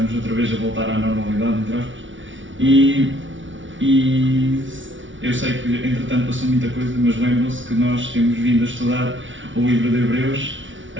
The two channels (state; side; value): late; left; 0.56 ms